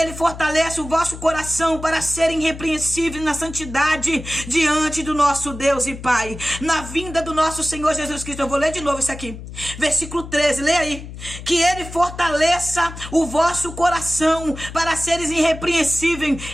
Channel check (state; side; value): noise; left; hum, 12 dB below the sound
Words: fortaleça o vosso coração para serem irrepreensíveis na santidade diante do nosso Deus e Pai, na vinda do nosso Senhor Jesus Cristo. Eu vou ler de novo isso aqui. Versículo 13, lê aí. Que ele fortaleça o vosso coração para seres irrepreensíveis